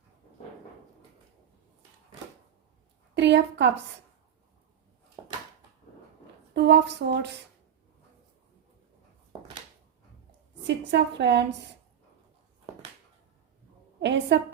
3 of cups. 2 of swords. Six of wands, ace of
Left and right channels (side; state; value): left; quieter; 9.2 dB